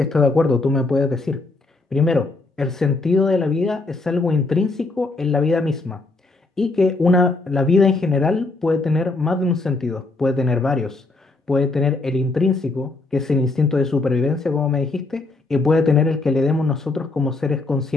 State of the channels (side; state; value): right; quieter; 3.3 dB